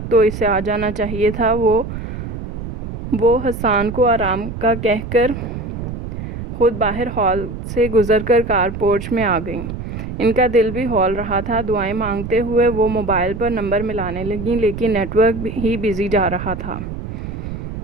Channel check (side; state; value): right; noise; rumble, 8 dB below the sound